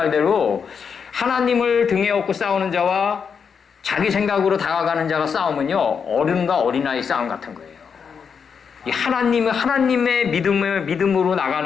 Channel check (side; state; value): right; quieter; 6.4 dB